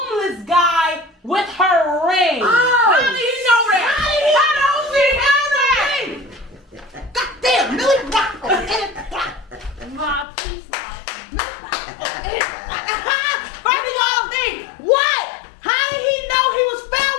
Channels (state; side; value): drops out; right; at 10.2 s